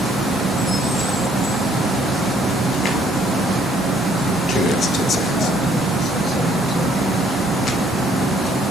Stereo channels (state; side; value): normal; both; correlation 0.65